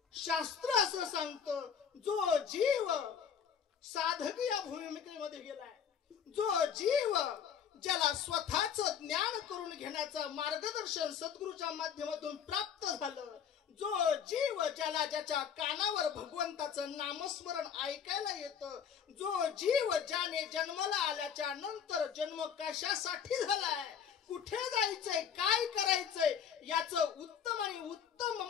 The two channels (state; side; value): quieter; right; 7.7 dB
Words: शास्त्र असं सांगतं, जो जीव साधक या भूमिकेमध्ये गेलाय, जो जीव ज्याला स्वतःच ज्ञान करून घेण्याचं मार्गदर्शन सद्गुरूच्या माध्यमातून प्राप्त झालं, जो जीव ज्याला ज्याच्या कानावर भगवंताचं नामस्मरण ऐकायला येतं, जो जीव ज्याने जन्माला आल्याच्या नंतर जन्म कशासाठी झालाय, कुठे जायचंय, काय करायचंय याचं उत्तम आणि उत्तम